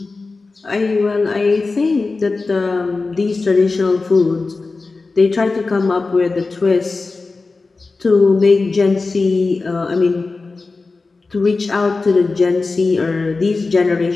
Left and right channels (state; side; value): quieter; right; 3.8 dB